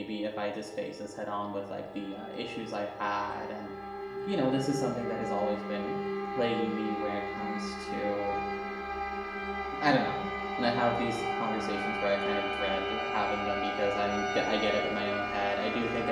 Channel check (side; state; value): both; identical; correlation 1.00